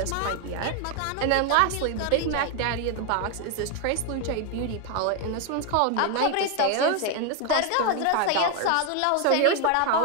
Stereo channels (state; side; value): different; both; correlation 0.01